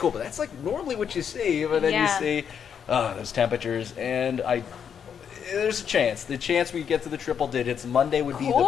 but that's like normally what you see. But then you see those temperatures, and there's a chance. The chance we get to the triple digits. Monday would be the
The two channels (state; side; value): quieter; right; 7.7 dB